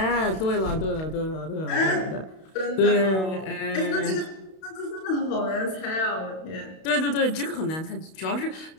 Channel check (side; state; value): right; late; 32 ms